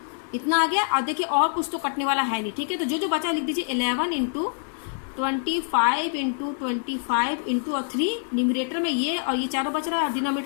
इतना आ गया। और देखिए और कुछ तो कटने वाला है नहीं, ठीक है। तो जो जो बचा लिख दीजिए 11 इंटू 25 इंटू 25 इंटू और 3 न्यूमरेटर में ये, और ये चारों बच रहा है, और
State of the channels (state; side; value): silent; right; 60 dB below the other